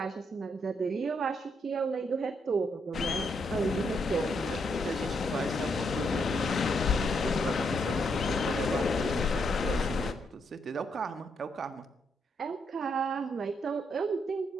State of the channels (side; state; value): both; normal; correlation 0.77